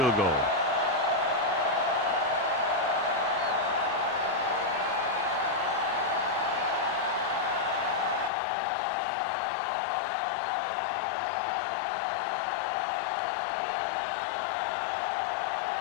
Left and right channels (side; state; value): right; drops out; at 8.3 s